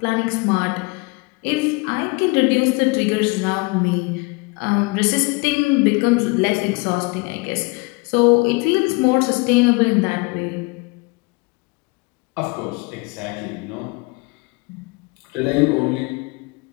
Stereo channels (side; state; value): right; quieter; 28.2 dB